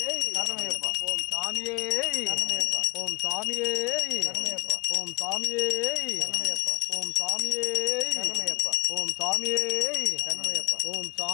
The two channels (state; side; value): quieter; right; 27.8 dB